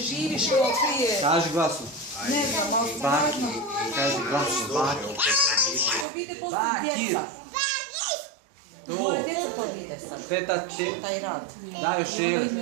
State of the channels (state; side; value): drops out; left; at 6.1 s